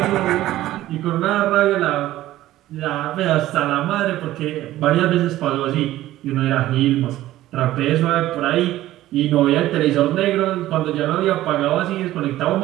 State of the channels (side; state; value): left; quieter; 14.9 dB